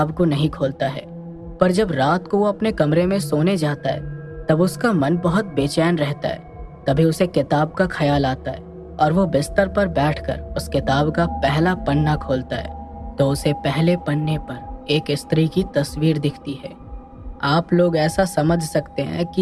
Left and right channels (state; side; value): identical; both; correlation 1.00